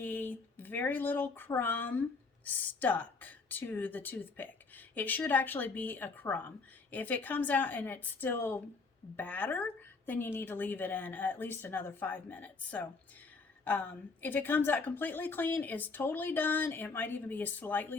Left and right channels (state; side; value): quieter; right; 4.2 dB